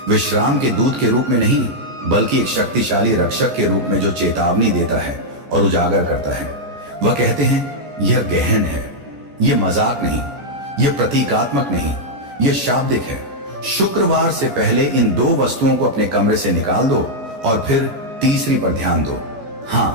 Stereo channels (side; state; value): left; late; 14 ms